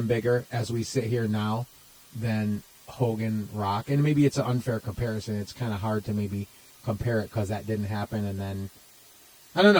bigger as we sit here now than Hogan Rock? And maybe it's an unfair comparison. It's kind of hard to maybe compare it because that didn't happen. And then, I don't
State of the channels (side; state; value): both; identical; correlation 1.00